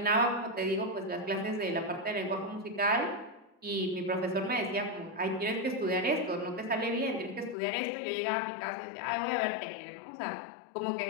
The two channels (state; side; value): drops out; right; at 7.6 s